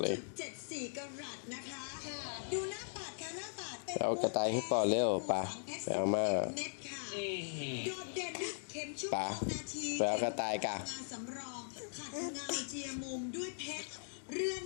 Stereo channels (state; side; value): silent; right; digital silence